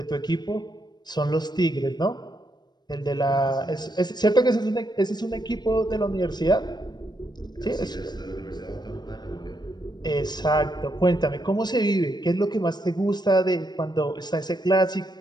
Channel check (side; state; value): right; late; 0.20 ms